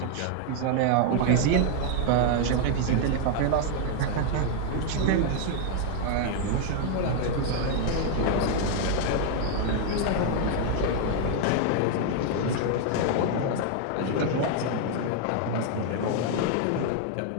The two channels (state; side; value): different; both; correlation 0.00